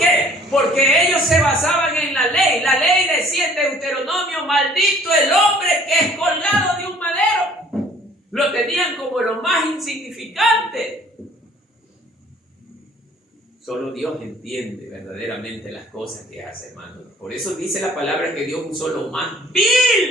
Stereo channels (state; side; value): normal; both; correlation 0.55